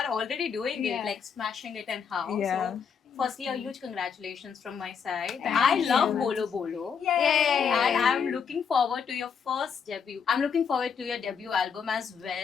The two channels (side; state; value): right; quieter; 6.6 dB